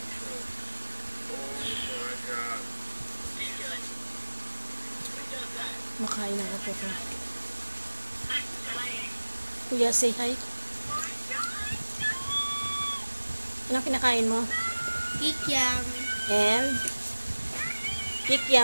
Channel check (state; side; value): inverted; both; correlation -1.00